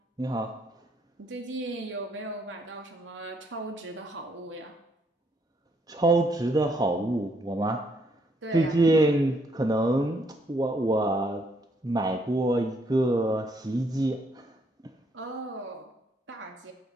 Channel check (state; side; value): normal; both; correlation 0.71